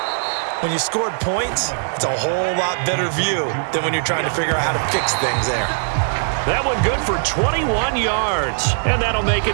When you scored points, it's a whole lot better view than when you're trying to figure out how to fix things there. That one good for 21 yards, and that'll make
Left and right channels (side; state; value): left; silent; digital silence